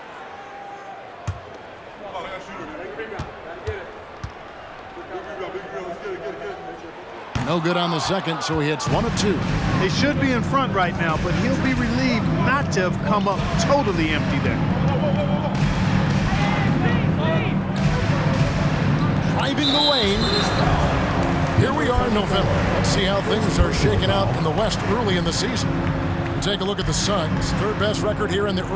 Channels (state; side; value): identical; both; correlation 1.00